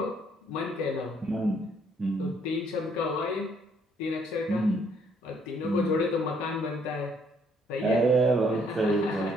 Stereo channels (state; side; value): normal; both; correlation 0.67